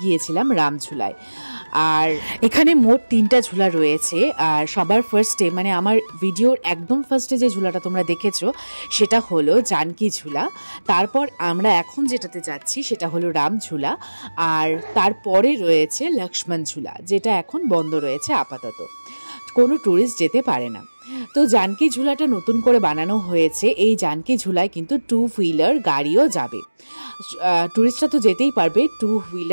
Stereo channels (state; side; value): inverted; both; correlation -1.00